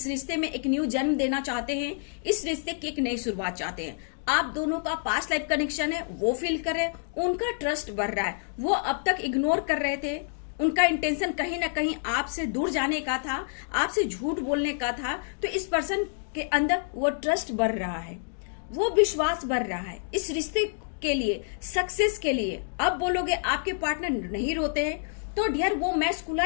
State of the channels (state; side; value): silent; right; digital silence